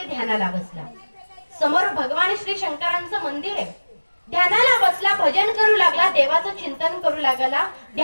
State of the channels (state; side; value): inverted; both; correlation -1.00